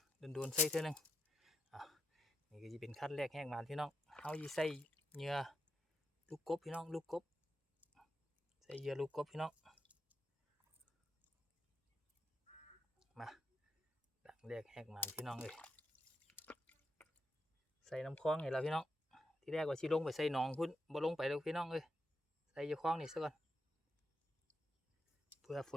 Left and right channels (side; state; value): both; normal; correlation 0.82